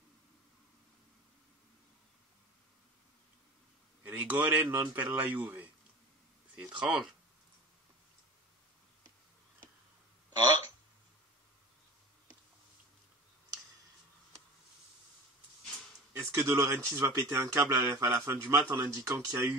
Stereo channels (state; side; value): normal; both; correlation 0.37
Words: Rigore non per la Juve. C'est étrange. Ah. Est-ce que De Laurentiis va péter un câble à la fin du match en indiquant qu'il y a